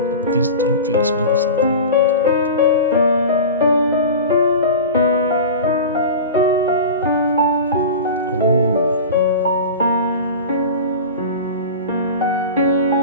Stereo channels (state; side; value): inverted; both; correlation -0.32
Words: these don't really smell of something.